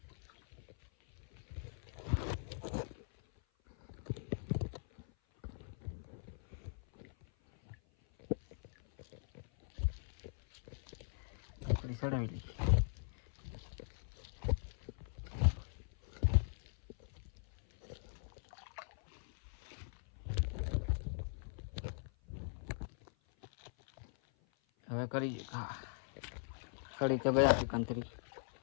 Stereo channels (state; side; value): silent; right; 50 dB below the other